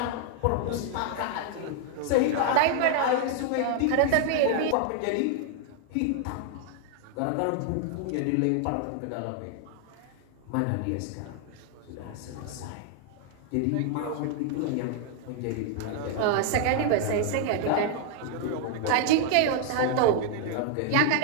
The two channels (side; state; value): both; different; correlation 0.00